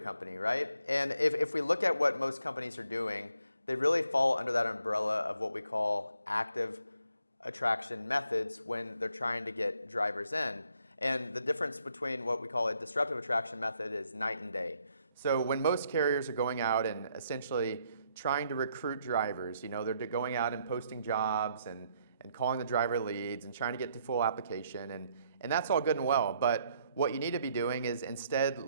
right? And if we look at what most companies are doing, they really fall under that umbrella of what we call active attraction methods when they're trying to get drivers in. And the difference between what we call a disruptive attraction method is night and day. So when most carriers are going out and essentially trying to recruit drivers, they're going out and posting jobs and calling the driver leads and trying to get to full application, and that's all good and well. But what you need to be doing is instead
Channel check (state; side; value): inverted; both; correlation -0.72